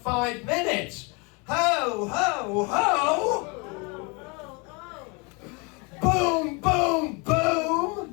minutes? Ho, ho, ho! Boom, boom,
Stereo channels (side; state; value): right; quieter; 30.8 dB